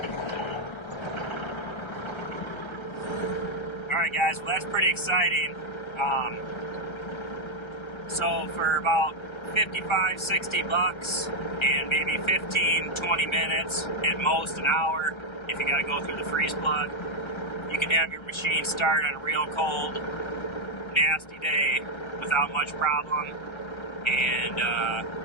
Alright guys, well that's pretty exciting. So for about 55, 60 bucks and maybe 15, 20 minutes, at most an hour, if you gotta go through the freeze plug, you can have your machine start on a real cold, nasty day without much problem, and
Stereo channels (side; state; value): right; late; 1.3 ms